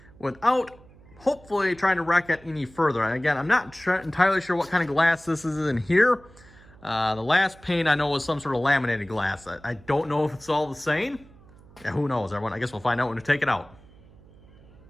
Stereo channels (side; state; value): right; noise; hum, 24 dB below the sound